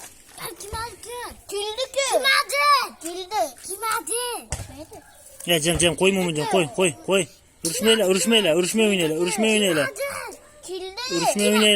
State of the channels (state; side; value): identical; both; correlation 1.00